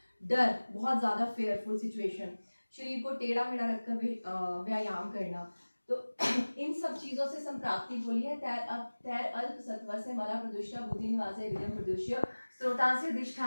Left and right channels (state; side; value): inverted; both; correlation -1.00